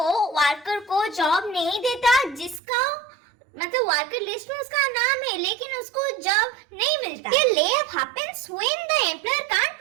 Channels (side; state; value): left; drops out; at 2.6 s